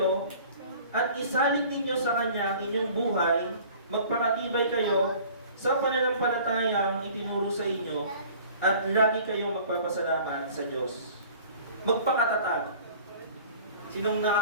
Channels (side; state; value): both; inverted; correlation -0.48